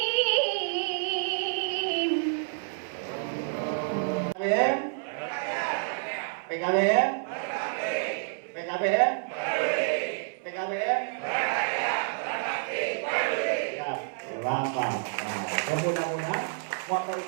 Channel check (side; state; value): left; silent; 58 dB below the other